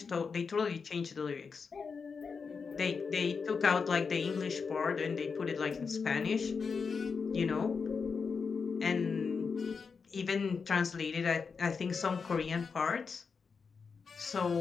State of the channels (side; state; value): right; quieter; 5.4 dB